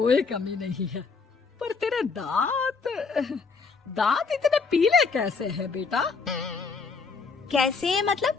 कमी नहीं है, पर तेरे दांत इतने पीले कैसे हैं बेटा? कैसे मतलब?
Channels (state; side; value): quieter; right; 4.8 dB